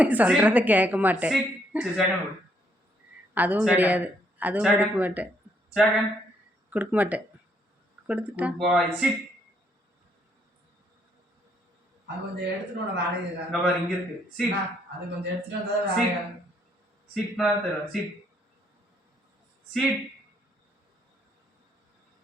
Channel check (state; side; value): normal; both; correlation 0.71